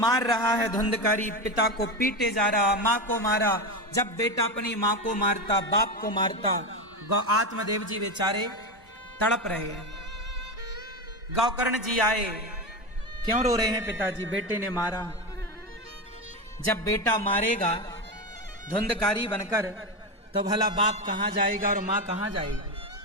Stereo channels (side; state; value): both; normal; correlation 0.17